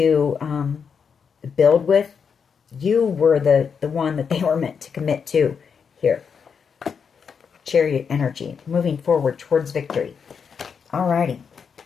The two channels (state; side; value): quieter; right; 6.4 dB